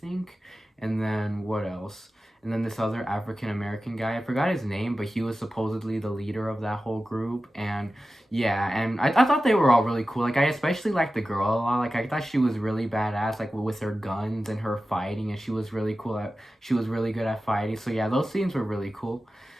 And then what else? And then this other African American guy, I forgot his name, but he was supposedly the leader of that whole group. And yeah, and I thought they were all really cool. Like I especially liked the girl a lot. Like I thought she was really badass, like with her guns and her fighting, and she was really cool she was really good at fighting. So yeah, those scenes were really cool.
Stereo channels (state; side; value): normal; both; correlation 0.94